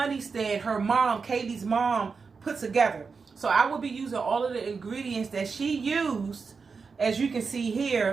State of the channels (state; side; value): quieter; left; 5.0 dB